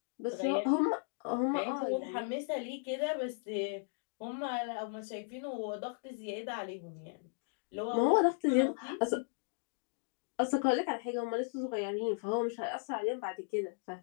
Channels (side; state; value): right; silent; digital silence